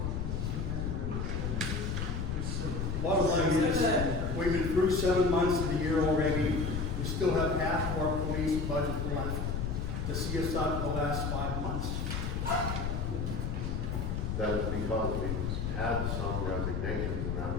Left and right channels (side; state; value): left; noise; rumble, 1 dB below the sound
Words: Bottom line is, we've been through 7 months of the year already. We still have half of our police budget left to see us out the last 5 months. That is because we've had some resignations and that